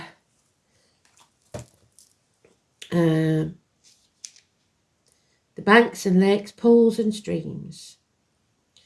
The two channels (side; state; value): both; identical; correlation 1.00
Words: The banks and lakes, pools and streams.